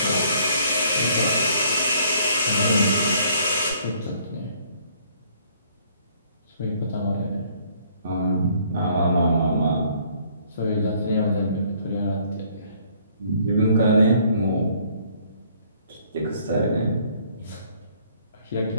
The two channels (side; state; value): both; inverted; correlation -0.62